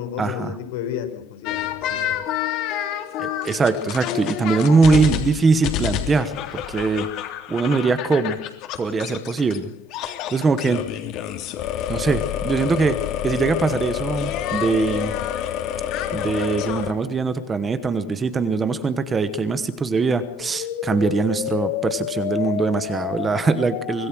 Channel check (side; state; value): both; normal; correlation 0.68